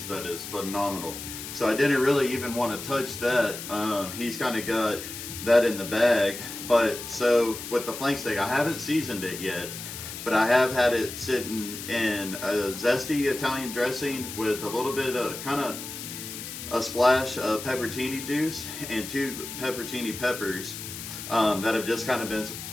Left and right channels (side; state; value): left; noise; hiss, 9 dB below the sound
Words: That is phenomenal. So I didn't really even want to touch that. He's kind of got that in the bag. But so with the flank steak, I haven't seasoned it yet, but I have had it sitting in a zesty Italian dressing with a little bit of kind of a splash of pepperoni juice and 2 pepperoni peppers that have just kind of been